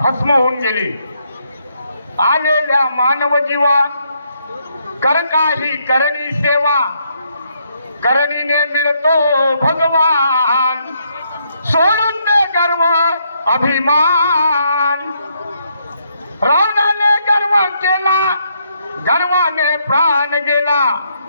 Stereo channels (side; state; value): both; inverted; correlation -0.75